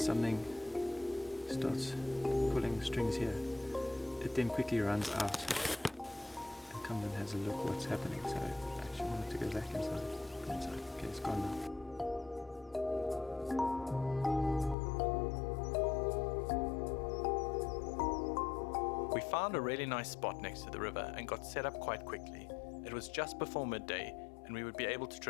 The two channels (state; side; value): drops out; right; at 14.8 s